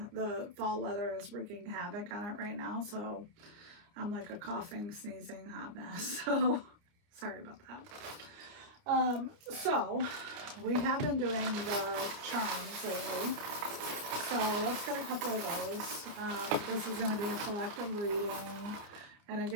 The fall weather is wreaking havoc on it right now. So I'm like a coughing, sneezing hot mess. So sorry about that. So we have been doing the charms lately. So let's get a couple of those. This is going to be a collective reading. And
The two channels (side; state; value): left; late; 29 ms